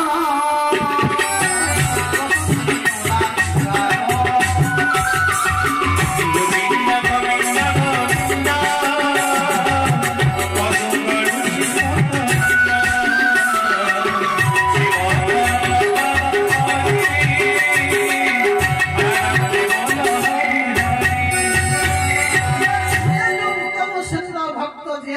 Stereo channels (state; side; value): identical; both; correlation 1.00